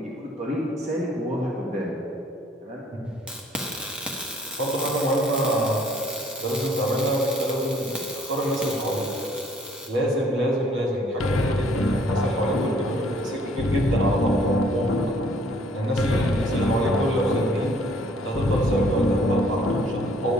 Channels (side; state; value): both; normal; correlation 0.60